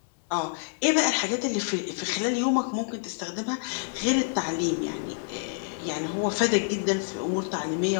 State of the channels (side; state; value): right; silent; digital silence